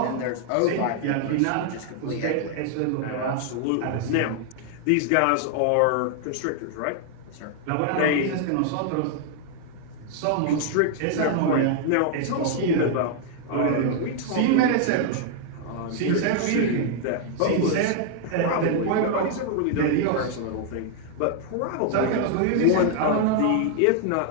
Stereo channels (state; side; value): different; both; correlation 0.00